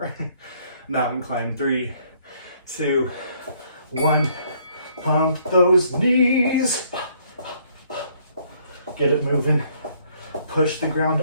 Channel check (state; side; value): inverted; both; correlation -0.65